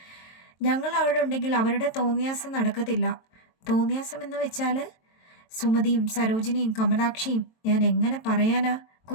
ഞങ്ങൾ അവിടെ ഉണ്ടെങ്കിൽ അവരുടെ തോന്നിയാസം നടക്കത്തില്ല. തോന്നിയാസം എന്ന് വെച്ചാൽ സുമതിയും സരോജിനിയും കമലാക്ഷിയും ഞാൻ എങ്ങനെ പറയാനാ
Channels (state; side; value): late; right; 22 ms